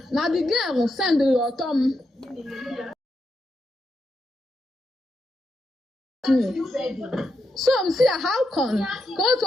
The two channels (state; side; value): normal; both; correlation 0.83